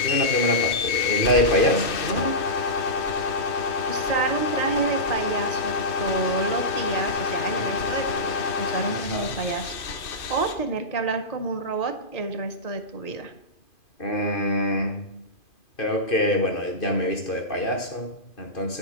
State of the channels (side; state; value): right; late; 2.5 ms